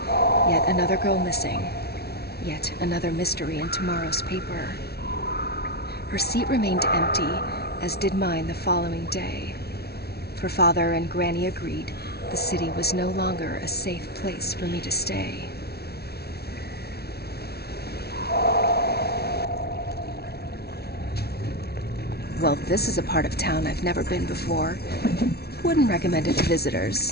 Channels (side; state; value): right; late; 0.46 ms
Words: yet another girl missing. Yet another mystery in tomorrow's paper. Her seat remained empty, as did mine the following day. For Father and Granny agreed the city was no longer a safe place for me to stay. Well, this is a part of town I've never been before. Wouldn't recommend it to visitors,